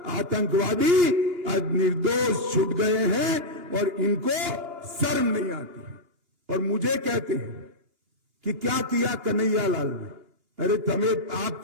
आतंकवादी आज निर्दोष छूट गए हैं और इनको शर्म नहीं आती है। और मुझे कहते हैं कि क्या किया कन्हैया लाल ने? अरे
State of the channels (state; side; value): late; left; 2.8 ms